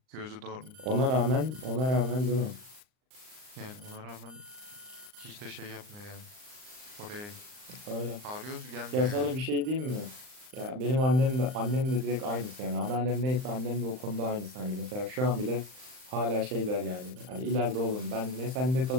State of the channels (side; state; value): left; late; 39 ms